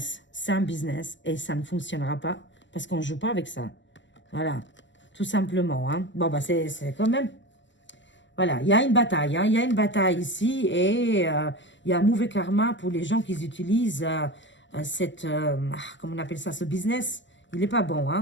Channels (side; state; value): right; late; 0.54 ms